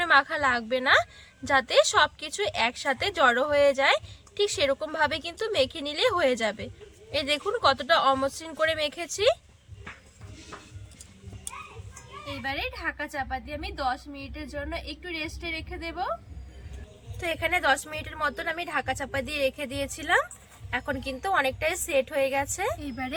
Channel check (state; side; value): identical; both; correlation 1.00